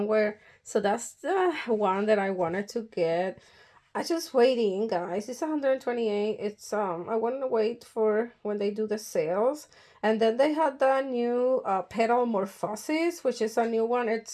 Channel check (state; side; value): identical; both; correlation 1.00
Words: So that's the one that I wanted to get. I just waiting, guys. It's 128. It's I want to wait for when they do the sales. And then they had the new Petal Morphosis, which is a new one.